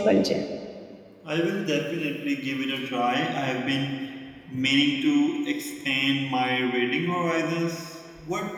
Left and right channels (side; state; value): both; identical; correlation 1.00